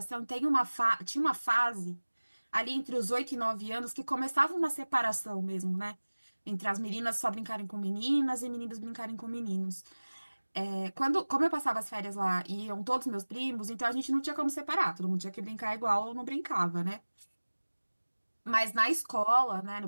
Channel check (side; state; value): both; inverted; correlation -1.00